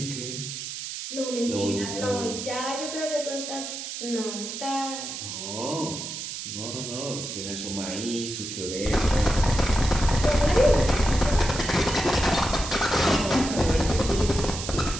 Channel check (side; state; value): right; noise; hiss, 7 dB below the sound